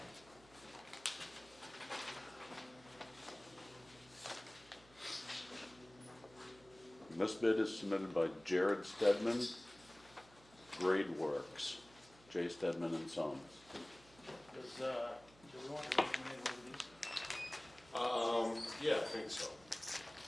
And this bid is submitted by Jared Stedman, Grade Works, J. Stedman and Sons. Do we want to recommend one of these? Yeah, I think so.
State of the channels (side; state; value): right; noise; hum, 24 dB below the sound